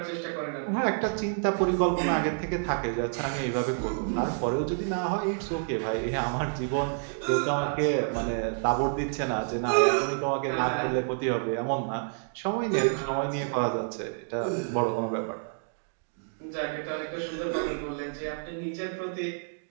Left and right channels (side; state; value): left; silent; digital silence